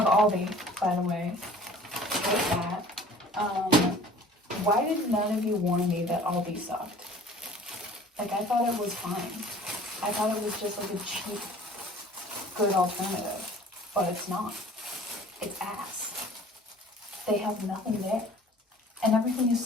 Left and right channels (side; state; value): both; normal; correlation 0.48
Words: Aldi, by the way, with that, why did none of you warn me that Aldi sucked? Like, I thought it was fine. I thought it was just like a cheap, good alternative, but it's not. It's ass. They have nothing there, and everything is